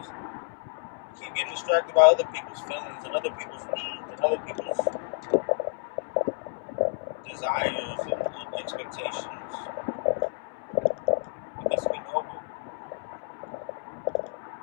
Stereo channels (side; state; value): right; silent; 58 dB below the other